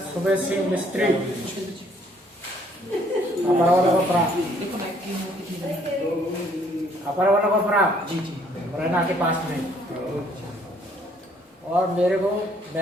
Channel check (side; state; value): both; normal; correlation 0.63